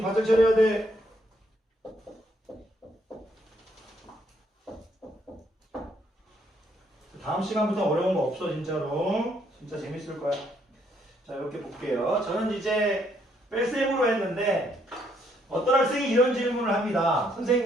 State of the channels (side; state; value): both; normal; correlation 0.70